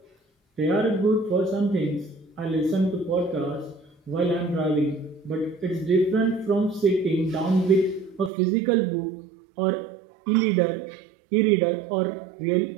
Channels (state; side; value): drops out; left; at 8.3 s